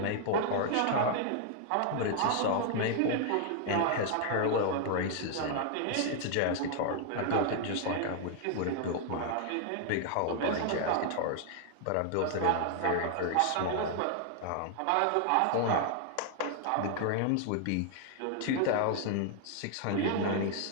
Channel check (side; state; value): both; different; correlation 0.00